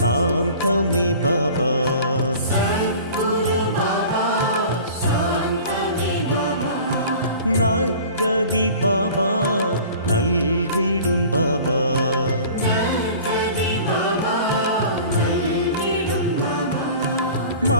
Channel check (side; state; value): both; inverted; correlation -0.43